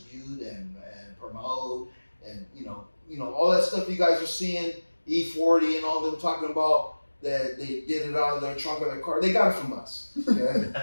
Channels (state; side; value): inverted; both; correlation -1.00